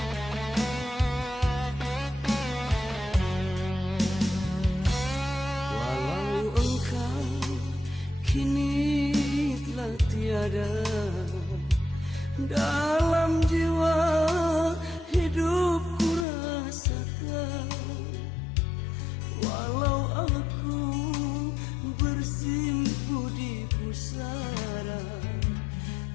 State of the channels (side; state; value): right; drops out; at 16.2 s